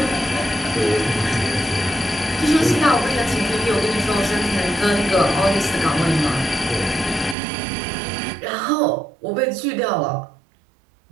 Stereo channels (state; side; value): drops out; left; at 7.4 s